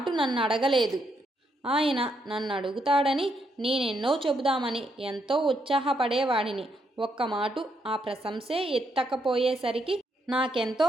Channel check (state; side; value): normal; both; correlation 0.77